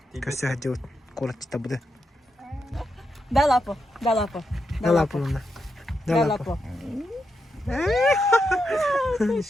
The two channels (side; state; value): both; normal; correlation 0.84